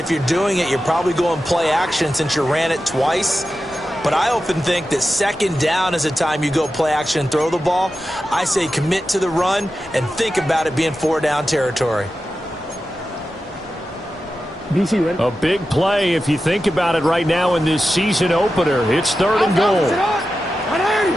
you're doing it, you're probably going play action since you ran it twice. But I often think that second down is a time you go play action and throw the ball. I say commit to the run and think about it being 4-down territory. A big play if you think about it right now in this season opener. It's third and goal. Oh,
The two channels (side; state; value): both; normal; correlation 0.92